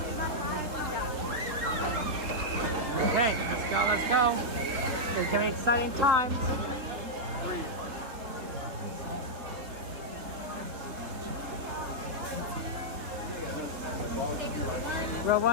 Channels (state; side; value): late; left; 3.5 ms